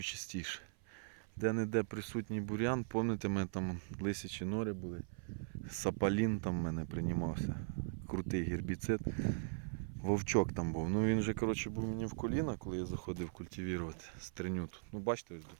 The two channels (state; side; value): silent; left; 51 dB below the other